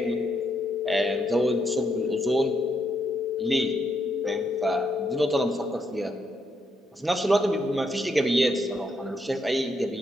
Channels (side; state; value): both; normal; correlation 0.77